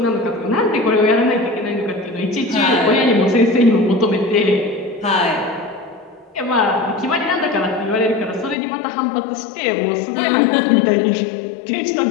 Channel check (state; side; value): drops out; right; at 8.6 s